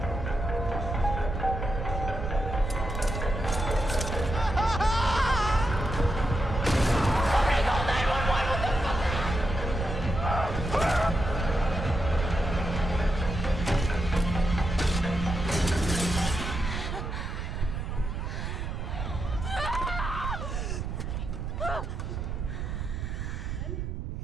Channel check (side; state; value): right; noise; rumble, 4 dB below the sound